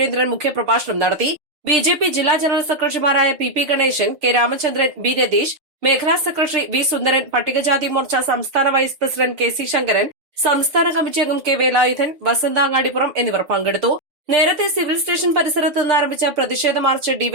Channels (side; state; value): left; late; 6.6 ms